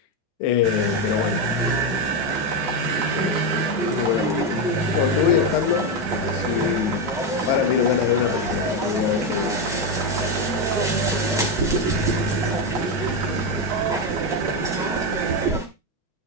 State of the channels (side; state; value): both; normal; correlation 0.08